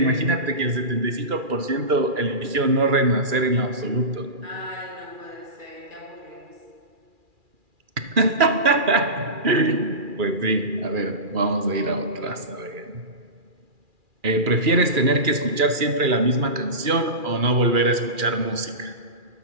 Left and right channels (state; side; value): late; left; 2.4 ms